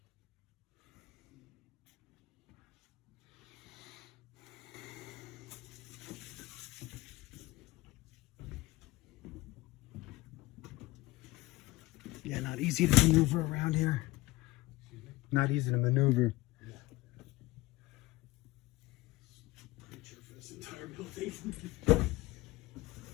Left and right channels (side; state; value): right; quieter; 19.3 dB